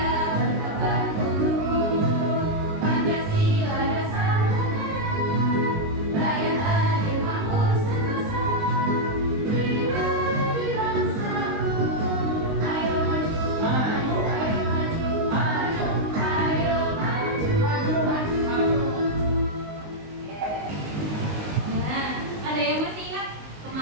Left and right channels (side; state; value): left; late; 19 ms